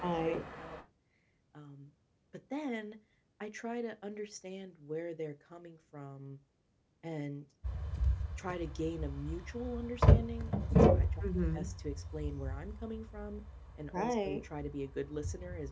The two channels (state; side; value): identical; both; correlation 1.00